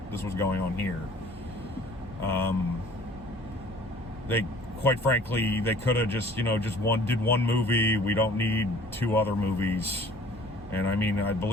going on here. They, quite frankly, they could have just, you know, did one movie. We don't need two other movies. And I mean, I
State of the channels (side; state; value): both; normal; correlation 0.51